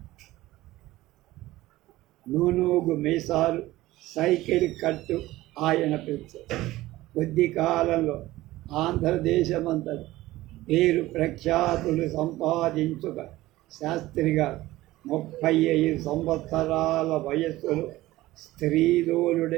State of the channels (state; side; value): quieter; left; 17.1 dB